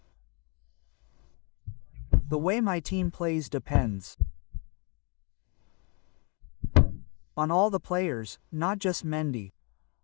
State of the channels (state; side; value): quieter; right; 34.2 dB